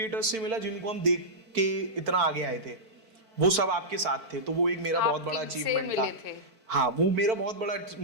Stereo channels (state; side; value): late; left; 4.5 ms